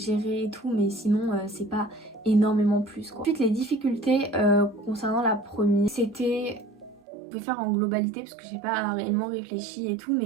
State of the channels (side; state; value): left; drops out; at 7.0 s